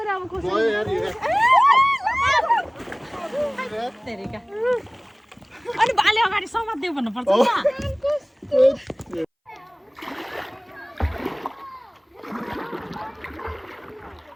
अब गयो यार तेरिका अनि बाले अगाडि समात्देऊ भन्नुपर्छ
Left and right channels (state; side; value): identical; both; correlation 1.00